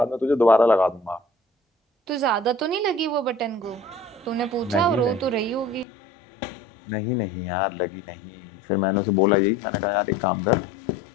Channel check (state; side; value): drops out; right; at 5.9 s